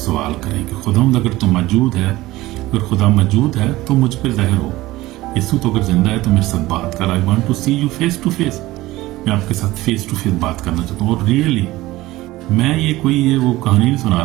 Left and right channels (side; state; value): left; quieter; 18.0 dB